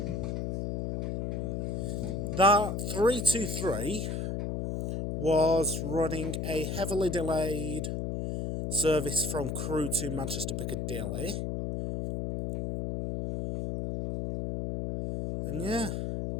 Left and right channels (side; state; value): left; noise; hum, 2 dB below the sound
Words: That 323 was running a heavily delayed service from Crewe to Manchester Piccadilly. And yeah.